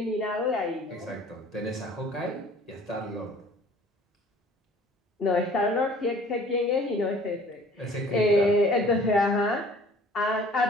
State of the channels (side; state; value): both; normal; correlation 0.51